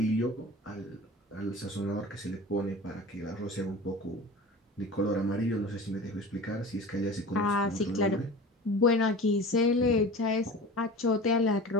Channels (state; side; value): normal; both; correlation 0.36